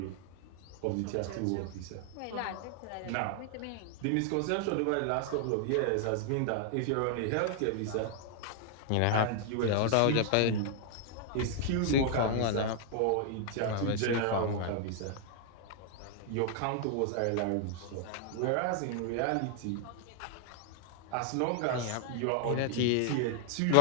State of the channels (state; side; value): different; both; correlation 0.00